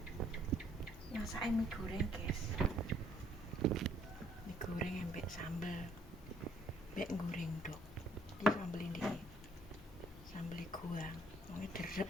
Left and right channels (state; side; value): normal; both; correlation 0.65